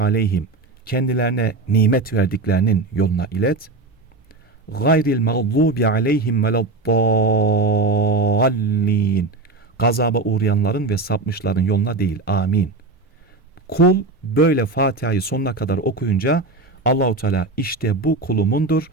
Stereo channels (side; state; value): left; quieter; 3.5 dB